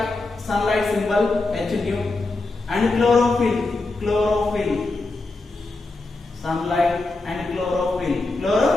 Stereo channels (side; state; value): right; quieter; 3.2 dB